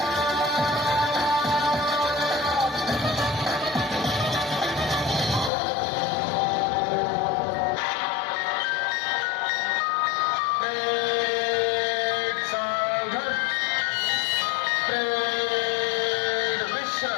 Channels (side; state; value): right; drops out; at 5.5 s